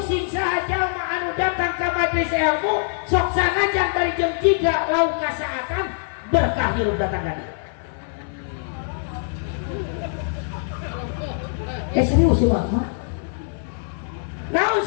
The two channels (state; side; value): silent; right; 63 dB below the other